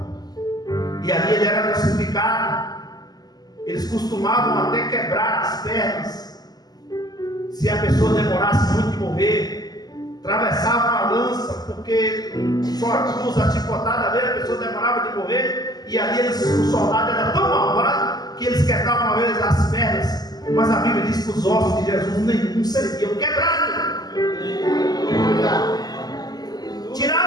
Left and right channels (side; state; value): right; late; 0.19 ms